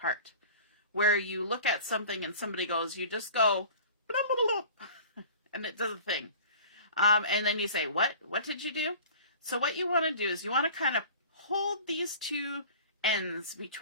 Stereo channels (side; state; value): both; inverted; correlation -0.42